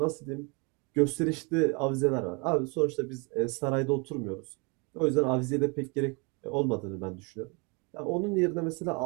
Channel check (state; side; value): quieter; left; 31.4 dB